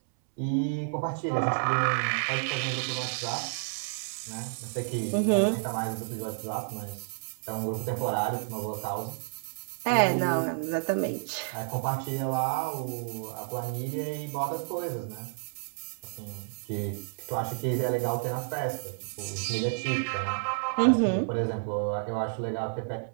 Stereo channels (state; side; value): silent; left; 58 dB below the other